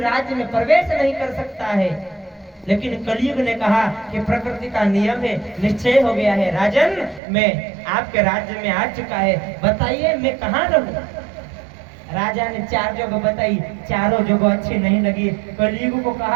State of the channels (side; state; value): left; drops out; at 7.2 s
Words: राज्य में प्रवेश नहीं कर सकता है। लेकिन कलयुग ने कहा कि प्रकृति का नियम है, निश्चय हो गया है राजन, मैं आपके राज्य में आ चुका है, बताइए मैं कहाँ रहूं। राजा ने 4 जगह बताई, चारों जगह अच्छी नहीं लगी। कलयुग को